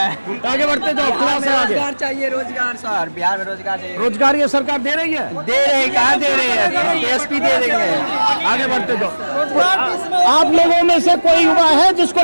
आगे बढ़ते जाओ, क्लास से आगे। रोजगार चाहिए, रोजगार सर, बिहार में रोजगार चाहिए। रोजगार ये सरकार दे रही है? दे रही, कहाँ दे रही है? टीएसपी दे रही है। आगे बढ़ते जाओ। आप लोगों में से कोई युवा है जिसको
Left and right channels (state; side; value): inverted; both; correlation -1.00